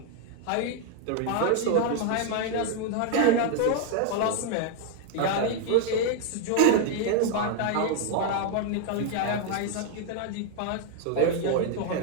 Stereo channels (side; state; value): both; different; correlation 0.00